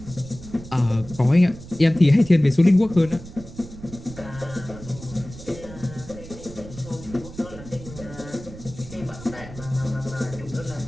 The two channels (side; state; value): right; noise; rumble, 15 dB below the sound